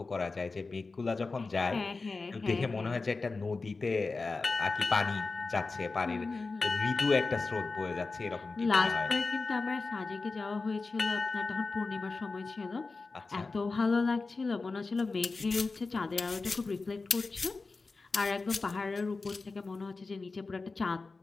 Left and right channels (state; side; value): quieter; right; 3.9 dB